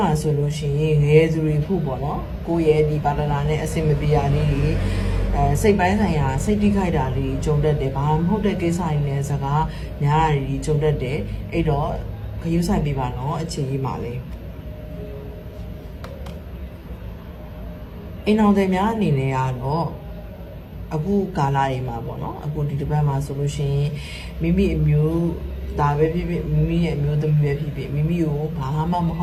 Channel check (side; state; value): both; identical; correlation 1.00